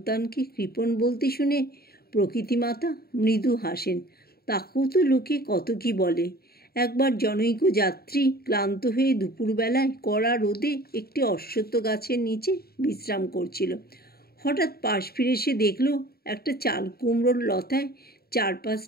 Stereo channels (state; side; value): late; right; 0.45 ms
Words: কৃপণ বলতে শুনে প্রকৃতিমাতা মৃদু হাসেন। তাকেও তো লোকে কত কি বলে। একবার জনৈক যাত্রী ক্লান্ত হয়ে দুপুরবেলায় কড়া রোদে একটি অশ্বত্থ গাছের নিচে বিশ্রাম করছিল। হঠাৎ পাশ ফিরে সে দেখল একটা চাল কুমড়োর লতায়